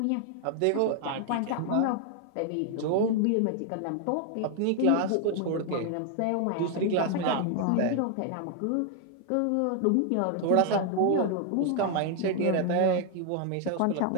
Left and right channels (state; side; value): different; both; correlation 0.00